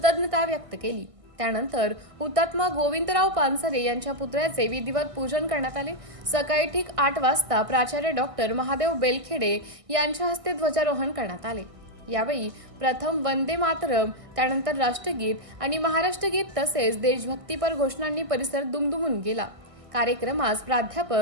व्यक्त केली। त्यानंतर हुतात्मा गोविंदराव पानसरे यांच्या पुतळ्याचे विधिवत पूजन करण्यात आले। सकाळी ठीक 8 वाजता प्राचार्य डॉक्टर महादेव बेळखेडे यांच्या हस्ते ध्वजारोहण करण्यात आले। यावेळी प्रथम वंदे मातरम, त्यानंतर राष्ट्रगीत आणि महाराष्ट्र गीत तसेच देशभक्तीपर घोषणांनी परिसर दुमदुमून गेला। कार्यक्रमास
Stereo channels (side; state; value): left; late; 1.6 ms